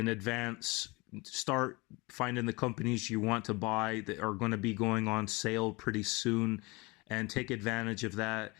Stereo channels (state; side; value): quieter; right; 25.5 dB